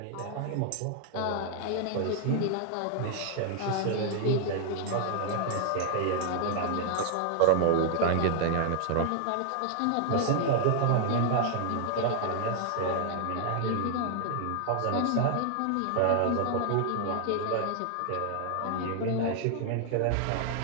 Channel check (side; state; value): both; different; correlation 0.00